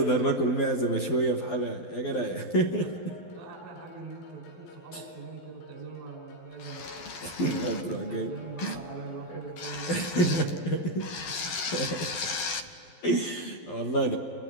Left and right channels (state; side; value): late; right; 12 ms